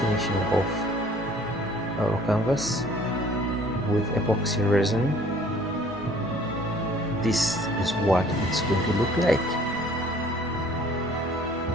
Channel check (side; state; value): both; normal; correlation 0.54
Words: off our canvas with epoxy resin, this is what it's going to look like.